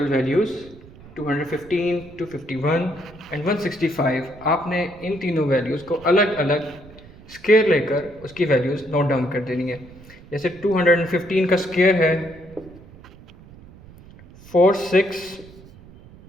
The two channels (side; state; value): right; noise; rumble, 21 dB below the sound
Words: वैल्यूज़ 215, 251 एंड 165, आपने इन तीनों वैल्यूज़ को अलग अलग स्क्वायर लेकर उसकी वैल्यूज़ नोट डाउन कर देनी है। जैसे 215 का स्क्वायर है